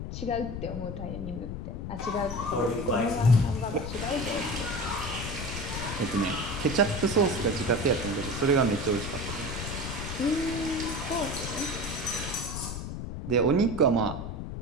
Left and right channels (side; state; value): left; noise; rumble, 6 dB below the sound